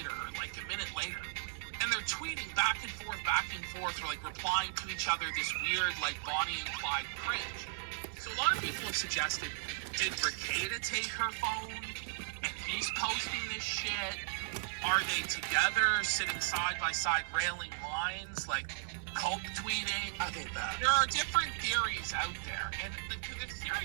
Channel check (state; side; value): silent; left; digital silence